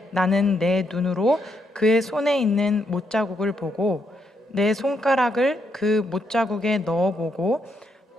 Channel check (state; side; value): normal; both; correlation 0.78